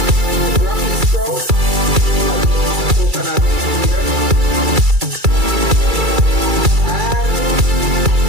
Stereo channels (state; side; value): late; left; 2.3 ms